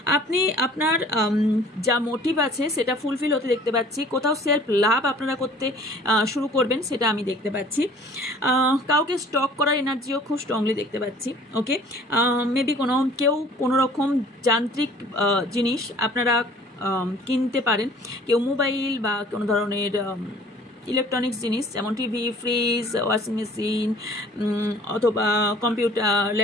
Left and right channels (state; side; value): normal; both; correlation 0.50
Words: আপনি আপনার যা মোটিভ আছে সেটা ফুলফিল হতে দেখতে পাচ্ছি। কোথাও সেলফ লাভ আপনারা করতে শুরু করবেন সেটা আমি দেখতে পাচ্ছি। কাউকে স্টক করার এনার্জিও খুব স্ট্রংলি দেখতে পাচ্ছি। ওকে, মেবি কেউ কোনো রকম যান্ত্রিক জিনিস আপনারা কিনতে পারেন, কেউ মোবাইল বা কোনো ধরনের ইলেকট্রনিক্স জিনিস যেমন টিভি, ফ্রিজ, ওয়াশিং মেশিন অথবা কম্পিউটার,